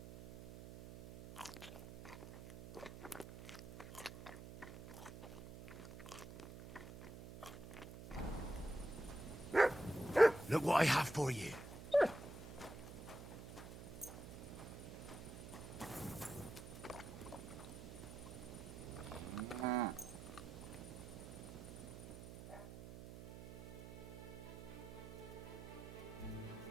Look what I have for you.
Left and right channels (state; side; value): noise; right; hum, 12 dB below the sound